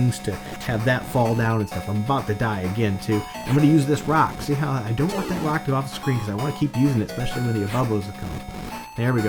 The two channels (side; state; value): both; identical; correlation 1.00